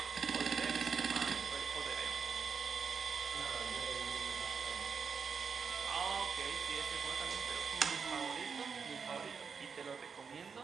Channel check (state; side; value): quieter; left; 5.9 dB